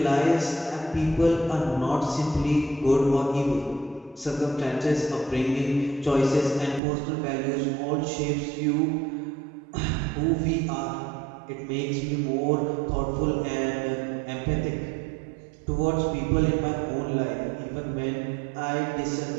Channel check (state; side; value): drops out; left; at 6.8 s